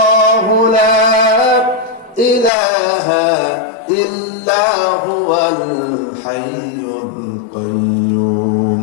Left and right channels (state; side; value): drops out; right; at 2.5 s